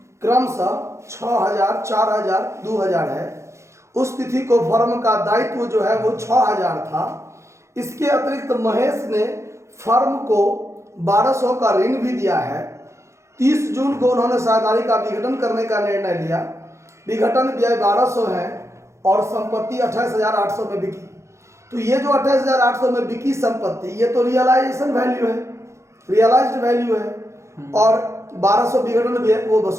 क्रमशः 6000, 4000, 2000 है। उस तिथि को फर्म का दायित्व जो है वो 6000 था। इसके अतिरिक्त महेश ने फर्म को 1200 का ऋण भी दिया है। 30 जून को उन्होंने साझेदारी का विघटन करने का निर्णय लिया। विघटन व्यय 1200 है और संपत्ति 28,800 में बिकी। तो ये जो 28,800 में बिकी संपत्ति, ये तो रियलाइजेशन वैल्यू है, रियलाइज्ड वैल्यू है। और 1200 विघटन व्यय वो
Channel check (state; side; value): late; left; 0.14 ms